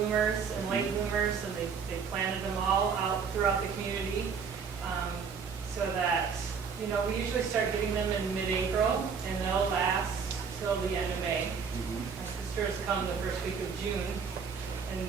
and late bloomers, and they planted them all out throughout the community so that, you know, we usually start getting them in mid-April, and they'll last till the end of May. My sister has come the first week of June and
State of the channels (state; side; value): quieter; left; 6.0 dB